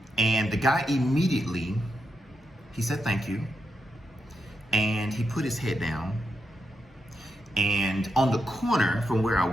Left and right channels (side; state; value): both; normal; correlation 0.85